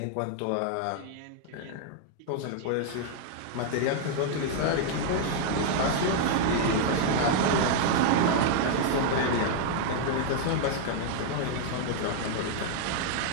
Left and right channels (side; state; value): both; different; correlation 0.00